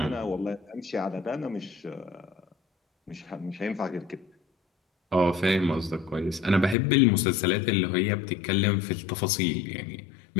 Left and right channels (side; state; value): right; drops out; at 6.8 s